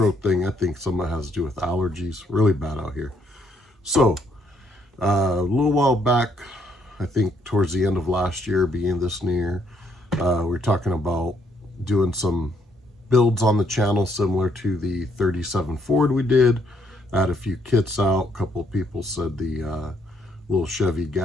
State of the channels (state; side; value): normal; both; correlation 0.70